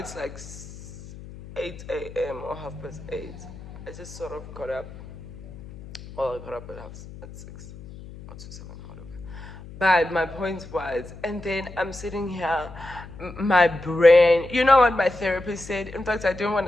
like 8 a.m. or 8:30. I just sort of got up. Well, I got up at 6 or to 7, whatever. But my point was, and then I'm sitting here, my brain, you know what my therapist said? In fact, I don't want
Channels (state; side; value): noise; left; hum, 15 dB below the sound